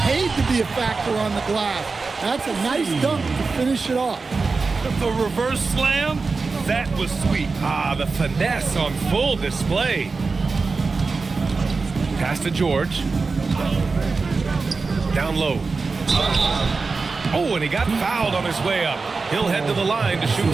paid to be a factor on the glass. That's a nice dunk to finish it off. The reverse slam, that was sweet. Ah, the finesse on full display. Pass to George. Down low. Oh, and he got fouled on his way up. He'll head to the line to shoot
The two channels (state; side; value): quieter; left; 4.2 dB